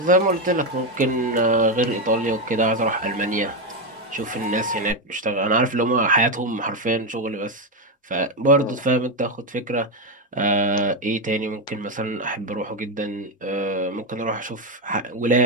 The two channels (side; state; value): both; normal; correlation 0.08